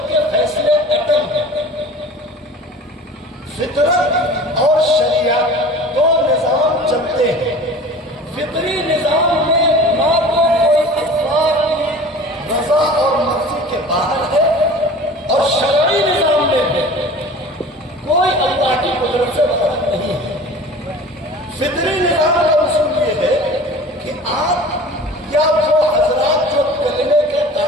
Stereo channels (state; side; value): normal; both; correlation 0.41